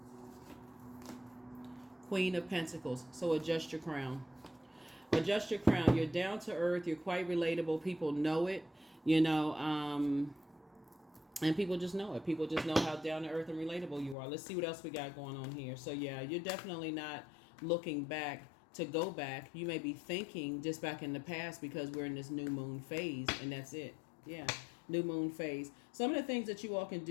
Queen of Pentacles. So adjust your crown. Adjust your crown. You're down to earth. You're quite relatable. People know it, you know, and people just know it. People just know how down to earth and relatable you are. Let's see what else we got going on here. So yeah, you're definitely not looking back to go back. You may be thinking just back in the past because we're in this new moon phase, and that's it. Yeah, new moon phase. Some of the things that you all can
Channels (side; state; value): right; drops out; at 14.2 s